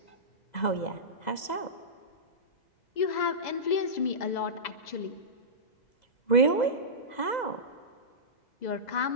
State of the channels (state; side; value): late; right; 2.0 ms